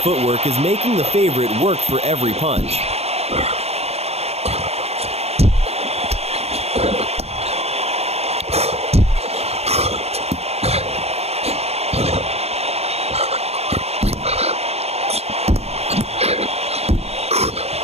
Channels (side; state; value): left; late; 0.30 ms